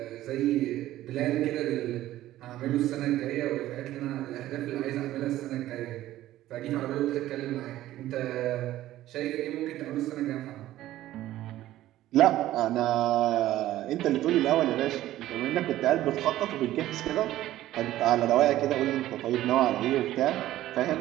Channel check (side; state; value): left; quieter; 14.4 dB